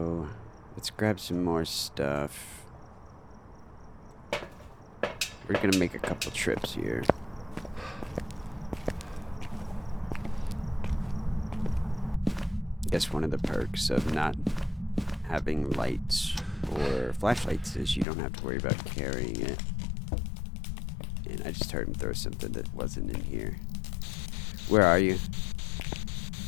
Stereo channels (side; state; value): right; drops out; at 18.1 s